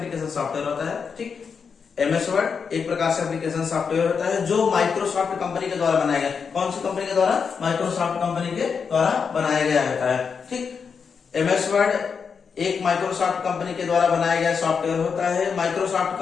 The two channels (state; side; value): quieter; right; 6.0 dB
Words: सॉफ्टवेयर होता है। ठीक, एमएस वर्ड एक प्रकार से एप्लीकेशन सॉफ्टवेयर होता है जो माइक्रोसॉफ्ट कंपनी के द्वारा बनाया गया। कौन सी कंपनी के द्वारा, माइक्रोसॉफ्ट कंपनी के द्वारा बनाया गया होता है। ठीक, एमएस वर्ड एक माइक्रोसॉफ्ट कंपनी के द्वारा बनाया गया सॉफ्टवेयर होता है। माइक्रोसॉफ्ट